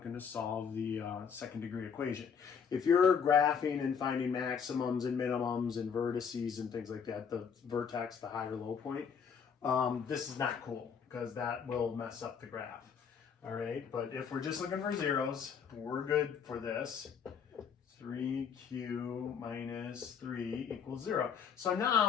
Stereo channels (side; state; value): right; quieter; 6.8 dB